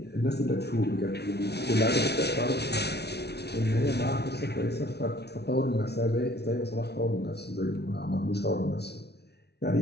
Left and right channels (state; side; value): late; right; 0.49 ms